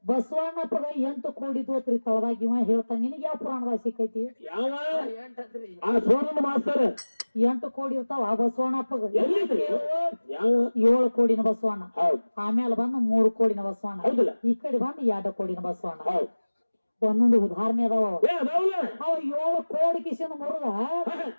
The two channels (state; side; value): inverted; both; correlation -1.00